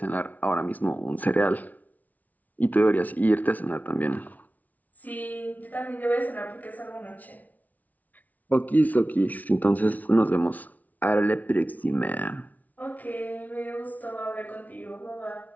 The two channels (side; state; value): right; late; 0.075 ms